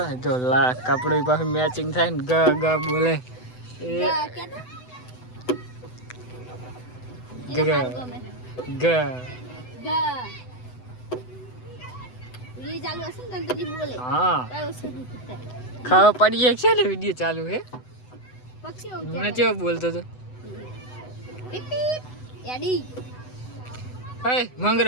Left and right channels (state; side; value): late; right; 8.0 ms